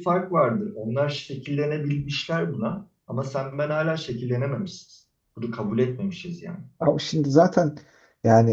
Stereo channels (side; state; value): both; identical; correlation 1.00